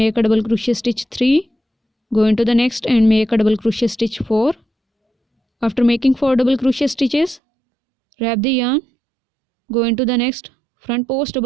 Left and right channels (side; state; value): left; drops out; at 7.4 s